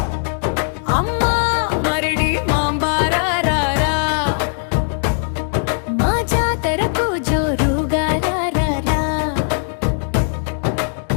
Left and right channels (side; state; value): right; silent; digital silence